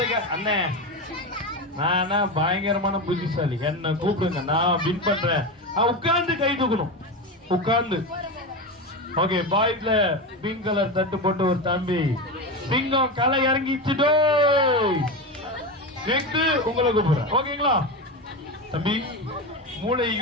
அண்ணே நானா பயங்கரமான புத்திசாலி. என்ன கூப்பிடுங்க நான் வின் பண்றேன். உட்கார்ந்து கை தூக்கணும். உட்கார்ந்து. ஓகே பாய்ஸ்ல பிங்க் கலர் தட்டு போட்டு ஒரு தம்பி சிங்கம் களை இறங்கிச்சுடோ. நெக்ஸ்ட் உங்களை கூப்பிடுறேன். ஓகேங்களா தம்பி? மூளையை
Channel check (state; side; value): normal; both; correlation 0.19